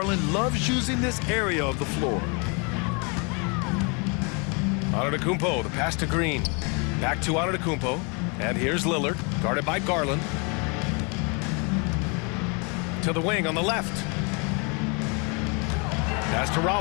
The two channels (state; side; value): quieter; right; 33.1 dB